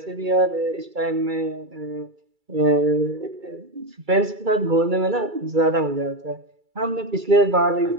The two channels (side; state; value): left; late; 2.3 ms